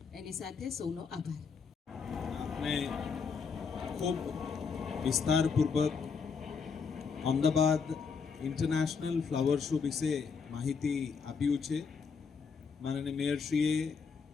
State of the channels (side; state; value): right; quieter; 5.6 dB